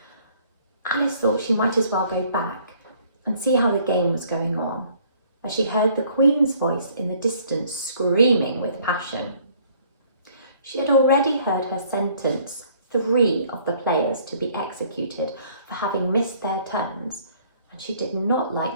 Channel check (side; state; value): both; inverted; correlation -0.60